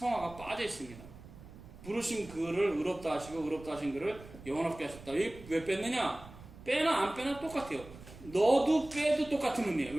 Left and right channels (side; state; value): right; noise; rumble, 18 dB below the sound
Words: 빠져 있습니다. 부르신 그를 의롭다 하시고 의롭다 하신 그를 영화롭게 하셨다. 왜 뺐느냐? 빼나 안 빼나 똑같아요. 넣어도 빼도 똑같은 의미예요.